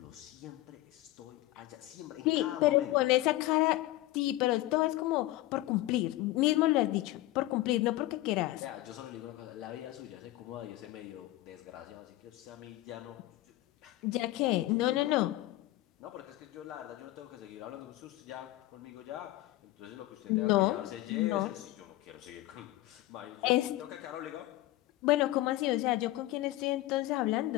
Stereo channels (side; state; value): right; quieter; 16.9 dB